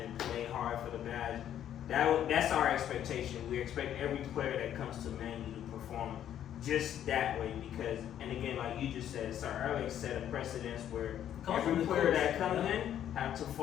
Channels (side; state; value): right; quieter; 10.5 dB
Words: and play hard for the badge, that's our expectation. We expect every player that comes to Man U to perform just that way because, and again, like you just said, Sir Alex set a precedence where every player that comes in have to